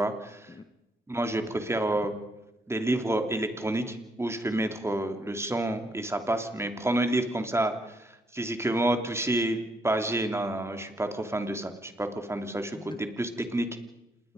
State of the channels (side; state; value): both; normal; correlation 0.73